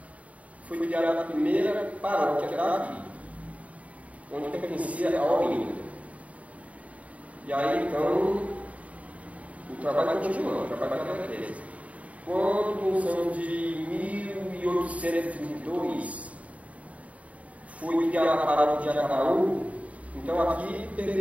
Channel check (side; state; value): left; late; 0.067 ms